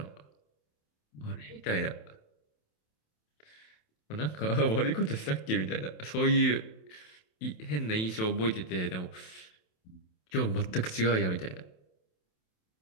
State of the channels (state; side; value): late; right; 27 ms